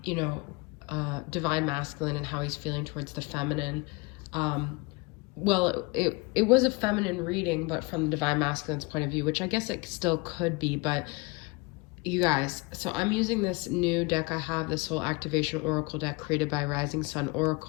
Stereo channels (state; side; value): quieter; right; 26.7 dB